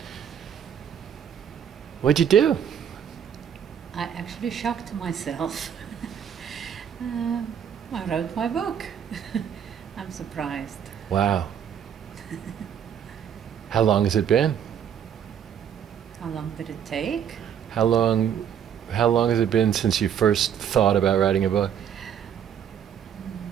What'd you do? I actually shocked myself. I wrote my book. I'm surprised. Wow. How long has it been? How long did it take? How long has it been since you first thought about writing a book?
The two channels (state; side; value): quieter; left; 8.7 dB